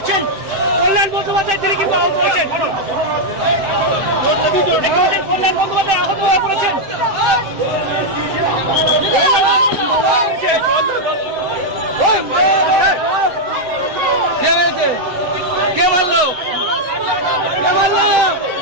কল্যাণ বন্দ্যোপাধ্যায় তিনি কিন্তু আহত হয়েছেন। কল্যাণ বন্দ্যোপাধ্যায় আহত হয়ে পড়েছেন। কে মারলো? কে মারলো?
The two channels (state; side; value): late; left; 7.7 ms